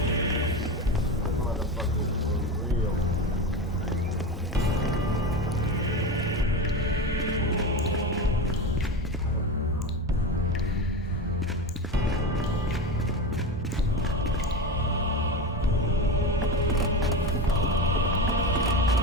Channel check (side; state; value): both; normal; correlation 0.23